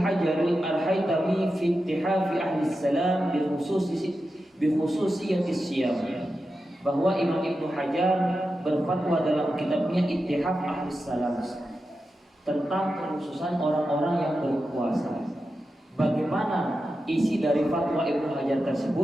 al-Haytami fi ittihafi ahli salam bi khususiyati siyam, bahwa Imam Ibnu Hajar berfatwa dalam kitabnya Ittihaf Ahli Salam tentang kekhususan orang-orang yang berpuasa. Bagaimana isi dari fatwa Ibnu Hajar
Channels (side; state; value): both; normal; correlation 0.90